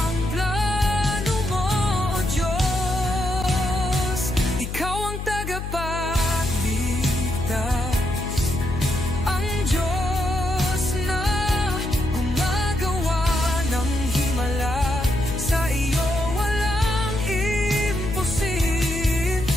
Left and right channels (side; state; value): left; noise; hum, 6 dB below the sound